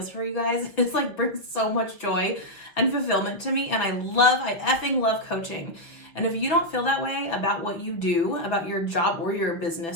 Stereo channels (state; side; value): late; right; 5.7 ms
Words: for you guys. It's like brings so much joy and fulfillment to me, and I effing love coaching. And if you don't feel that way about what you do, about your job or your